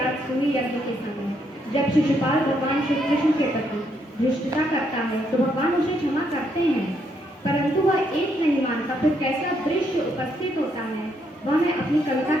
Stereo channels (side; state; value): both; normal; correlation 0.74